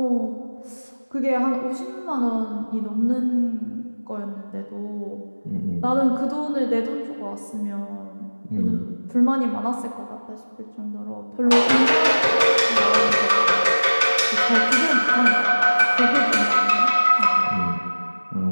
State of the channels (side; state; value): both; inverted; correlation -1.00